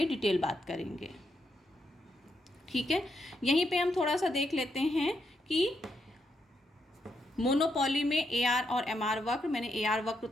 डिटेल बात करेंगे। ठीक है, यहीं पे हम थोड़ा सा देख लेते हैं कि मोनोपोली में AR और MR वक्र, मैंने AR वक्र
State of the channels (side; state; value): both; normal; correlation 0.80